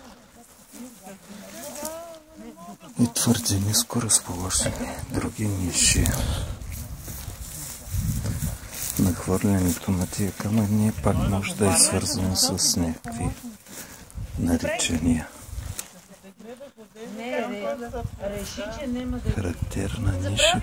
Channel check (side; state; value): both; identical; correlation 1.00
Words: И твърде ниско разположени други ниши. Нахвърлянето на тия камъни пак може да е свързано с някакви наричания. Характерна ниша,